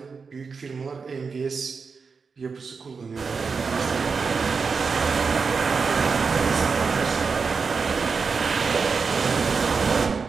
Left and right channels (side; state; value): left; quieter; 5.1 dB